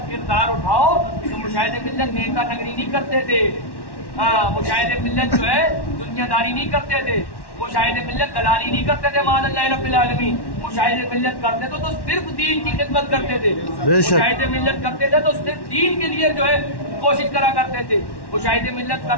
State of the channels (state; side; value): late; right; 1.1 ms